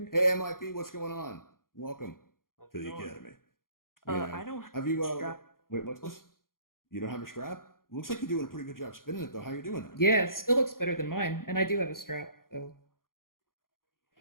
Hey, MIP, what's going on? Welcome How's to it the going? academy. I don't Have you strap. wait? What's this? You don't have a strap? Looks like you're doing a pretty good job spinning it, though. How you doing that? Yeah, it still looks better than mine, and I do have a strap. So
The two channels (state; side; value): late; right; 0.91 ms